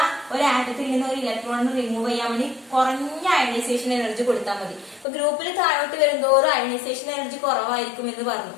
ഒരു ആറ്റത്തിൽ നിന്ന് ഒരു ഇലക്ട്രോണിനെ റിമൂവ് ചെയ്യാൻ വേണ്ടി കുറഞ്ഞ അയണൈസേഷൻ എനർജി കൊടുത്താൽ മതി. അപ്പൊ ഗ്രൂപ്പിൽ താഴോട്ട് വരുന്നതോറും അയണൈസേഷൻ എനർജി കുറവായിരിക്കും എന്ന് പറഞ്ഞു.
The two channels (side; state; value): right; drops out; at 5.1 s